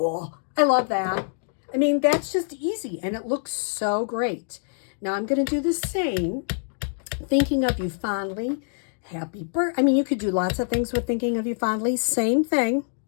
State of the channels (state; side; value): silent; right; digital silence